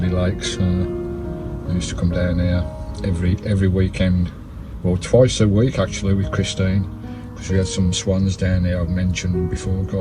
lakes. I used to come down here every weekend, well, twice a week actually, with Christine, because we had some swans down there. I've mentioned before,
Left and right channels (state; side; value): identical; both; correlation 1.00